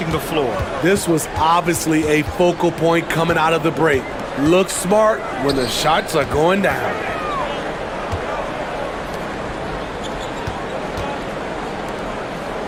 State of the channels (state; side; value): identical; both; correlation 1.00